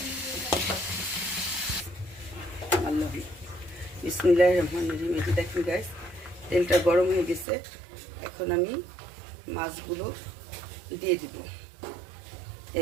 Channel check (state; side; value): drops out; left; at 7.5 s